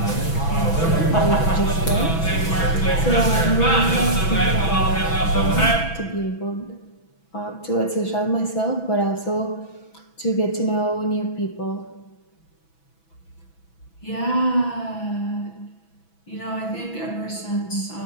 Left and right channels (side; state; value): right; late; 6.1 ms